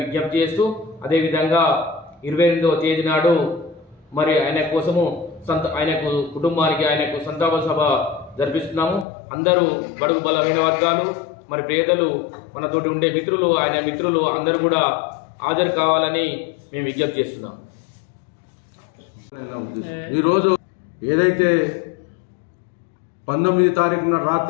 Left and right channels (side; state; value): right; drops out; at 9.1 s